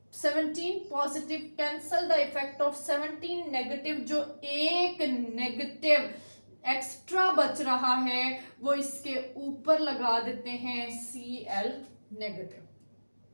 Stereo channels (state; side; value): inverted; both; correlation -1.00